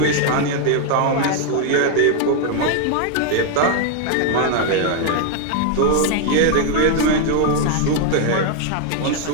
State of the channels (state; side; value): different; both; correlation 0.00